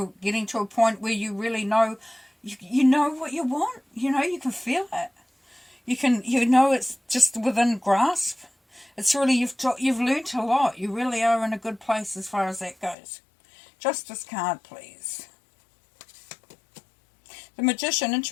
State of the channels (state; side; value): drops out; right; at 13.0 s